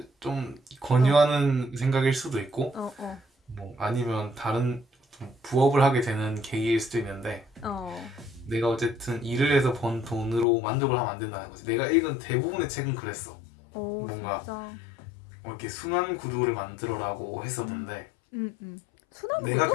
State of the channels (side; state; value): right; drops out; at 10.5 s